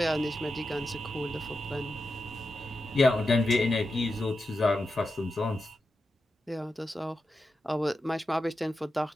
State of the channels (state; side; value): normal; both; correlation 0.89